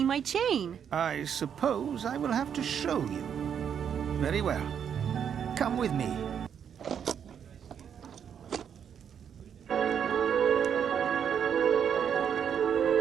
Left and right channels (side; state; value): left; quieter; 8.1 dB